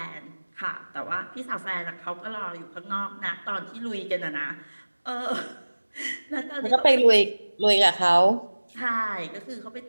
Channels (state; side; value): inverted; both; correlation -1.00